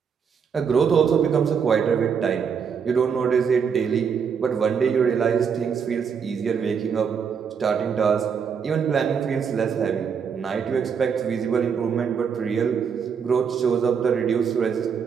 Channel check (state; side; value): quieter; left; 6.7 dB